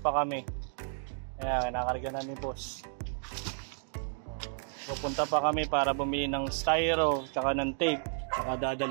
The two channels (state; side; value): silent; left; 56 dB below the other